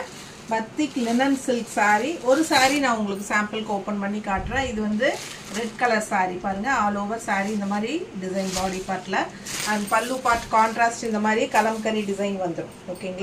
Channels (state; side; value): identical; both; correlation 1.00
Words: பத்திக் linen silk saree. ஒரு saree நான் உங்களுக்கு சாம்பிளுக்கு ஓபன் பண்ணி காட்டுறேன். இது வந்து ரெட் கலர் saree பாருங்க. ஆல் ஓவர் saree இந்த மாதிரி டிசைன் பாடி பார்ட்ல and பல்லு பார்ட் கான்ட்ராஸ்ட் இந்த மாதிரி கலம்கரி டிசைன் வந்துரும்.